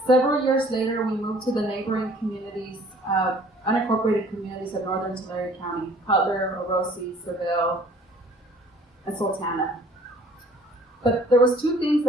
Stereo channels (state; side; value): normal; both; correlation 0.54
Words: Several years later, we moved to the neighboring communities, unincorporated communities of northern Tulare County, Cutler, Orosi, Seville, and Sultana. But there was 2 things